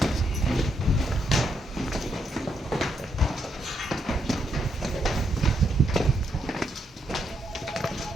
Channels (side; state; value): both; normal; correlation 0.77